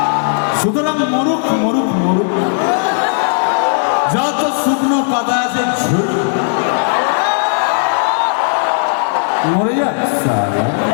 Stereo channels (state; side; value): silent; right; 70 dB below the other